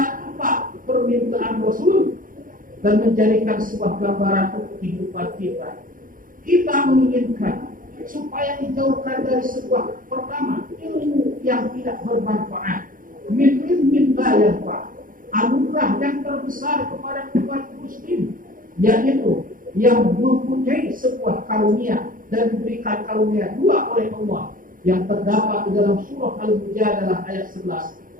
4 permintaan Rasul dan menjadikan sebuah gambaran untuk kehidupan kita. Kita menginginkan supaya dijauhkan dari sebuah, pertama, ilmu yang tidak bermanfaat, min la yanfa', anugerah yang terbesar kepada umat muslim, yaitu yang mempunyai sebuah karunia dan diberikan karunia 2 oleh Allah, yang terdapat di dalam surah Al-Mujadalah ayat 11.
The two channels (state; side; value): late; left; 0.40 ms